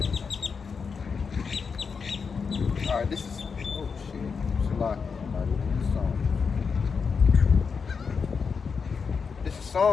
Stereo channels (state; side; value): quieter; right; 5.6 dB